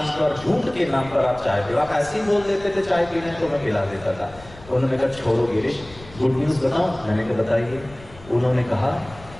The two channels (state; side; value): noise; left; rumble, 19 dB below the sound